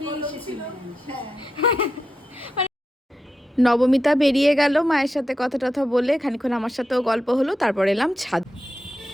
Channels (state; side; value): normal; both; correlation 0.87